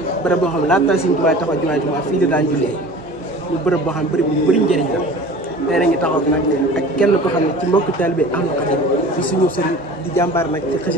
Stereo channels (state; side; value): normal; both; correlation 0.41